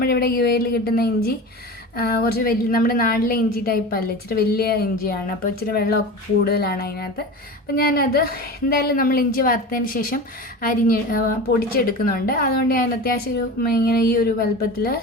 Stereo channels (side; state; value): both; normal; correlation 0.31